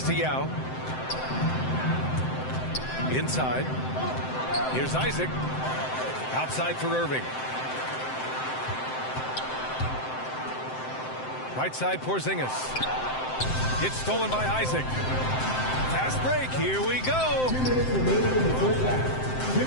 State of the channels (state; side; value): late; right; 7.7 ms